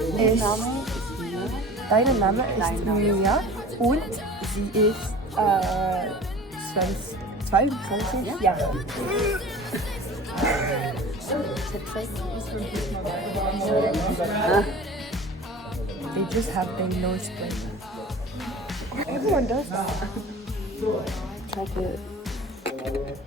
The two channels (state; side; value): normal; both; correlation 0.41